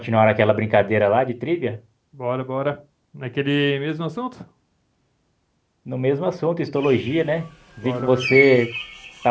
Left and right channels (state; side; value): identical; both; correlation 1.00